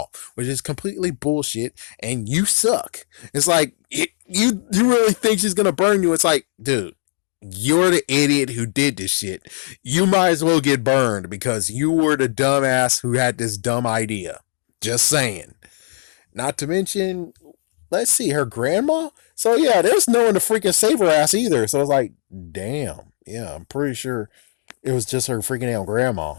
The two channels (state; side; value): silent; right; digital silence